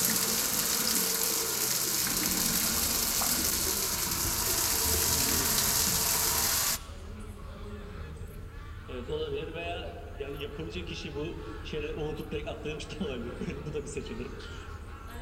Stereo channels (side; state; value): both; identical; correlation 1.00